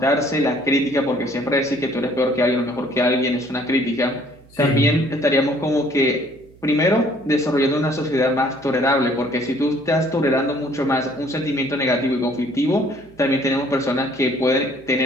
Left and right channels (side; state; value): right; noise; hum, 26 dB below the sound